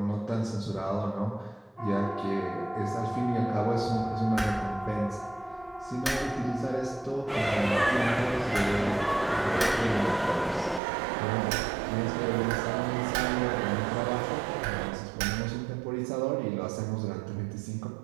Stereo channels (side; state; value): left; drops out; at 10.8 s